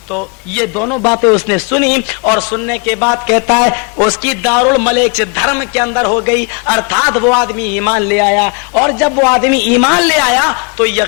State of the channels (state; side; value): quieter; right; 35.0 dB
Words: तो ये दोनों बातें उसने सुनी और सुनने के बाद कहता है उसकी दारुल मलेक धर्म के अंदर हो गई, अर्थात वो आदमी ईमान ले आया। और जब वो आदमी ईमान ले आया तो